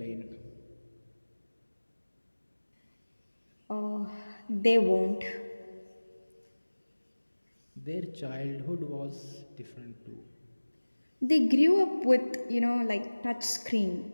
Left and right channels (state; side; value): inverted; both; correlation -1.00